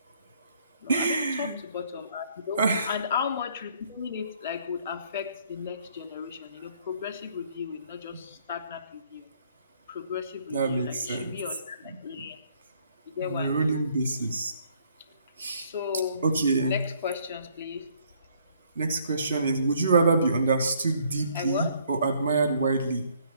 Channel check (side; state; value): both; inverted; correlation -0.65